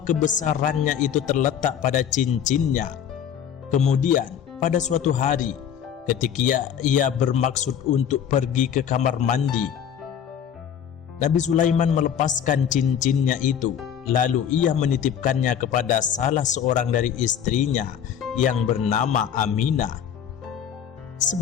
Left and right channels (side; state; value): right; quieter; 8.7 dB